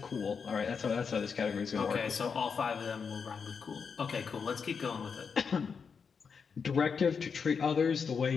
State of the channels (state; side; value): quieter; right; 5.9 dB